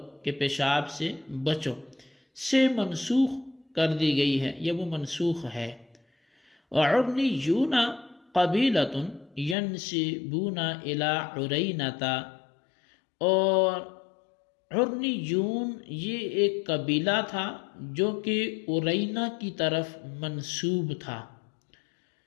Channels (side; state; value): right; drops out; at 9.6 s